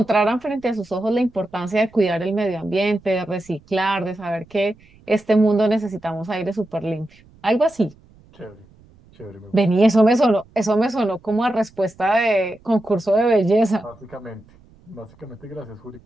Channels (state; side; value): noise; right; rumble, 28 dB below the sound